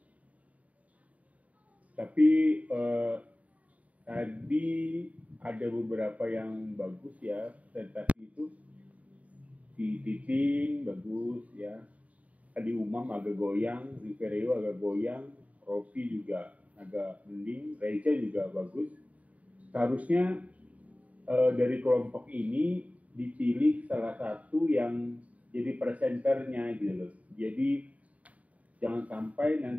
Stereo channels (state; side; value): late; left; 0.069 ms